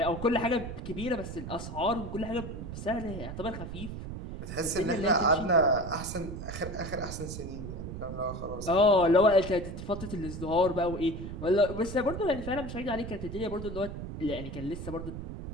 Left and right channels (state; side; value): noise; right; rumble, 8 dB below the sound